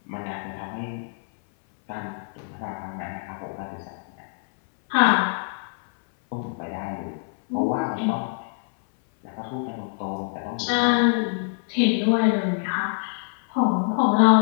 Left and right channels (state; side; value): silent; right; 59 dB below the other